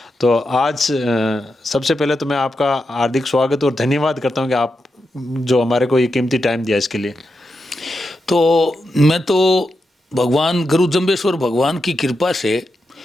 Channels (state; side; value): normal; both; correlation 0.87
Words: तो आज सबसे पहले तो मैं आपका हार्दिक स्वागत और धन्यवाद करता हूं कि आप जो हमारे को ये कीमती टाइम दिया इसके लिए। तो मैं तो भगवान गुरु जम्बेश्वर भगवान की कृपा से